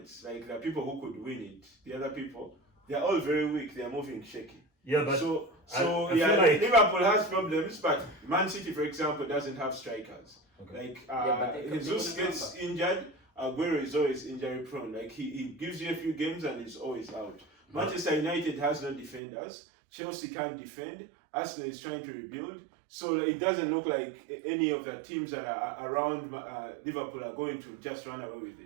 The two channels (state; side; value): drops out; left; at 19.2 s